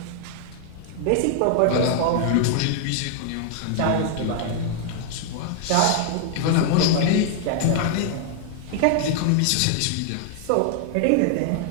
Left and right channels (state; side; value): different; both; correlation 0.00